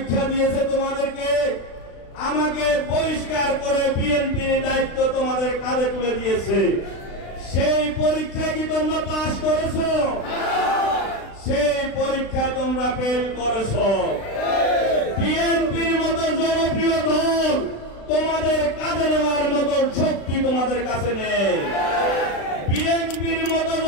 দিয়েছে তোমাদেরকে, আমাকে বহিষ্কার করে বিএনপির দায়িত্ব তোমাদের কাঁধে তুলে দিয়েছে। সেই পরীক্ষা কি তোমরা পাস করেছো? সেই পরীক্ষায় তোমরা ফেল করেছো। বিএনপির মতো জনপ্রিয় দল তোমাদের কাঁধে নেওয়ার মতো শক্তি তোমাদের কাছে নেই। বিএনপির মতো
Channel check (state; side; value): late; right; 36 ms